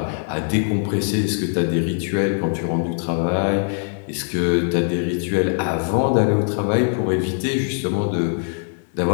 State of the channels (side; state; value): right; silent; digital silence